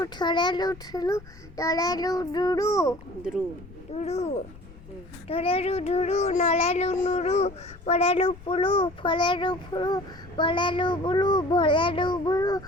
ছড়েলু ছুলু টলেলু ডুরু দ্রু ডুরু ধরেলু ধুরু নলেলু নুরু পড়েলু পুলু ফলেলু ফুলু বলেলু বুলু ভলেলু বুলু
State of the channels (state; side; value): noise; left; rumble, 20 dB below the sound